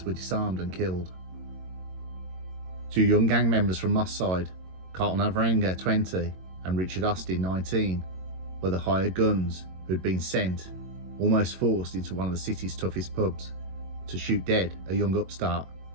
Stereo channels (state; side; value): late; left; 22 ms